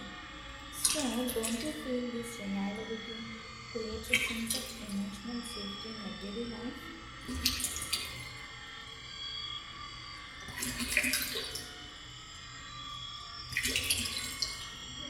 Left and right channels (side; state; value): both; identical; correlation 1.00